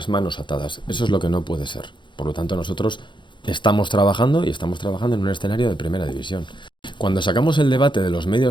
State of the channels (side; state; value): right; late; 0.23 ms